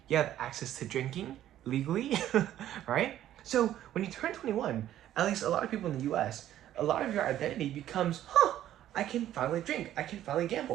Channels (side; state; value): left; quieter; 12.2 dB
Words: You have access to drinking legally, right? So when you turn 21, at least a lot of people in the US, a lot of your identity becomes, I can finally drink, I can finally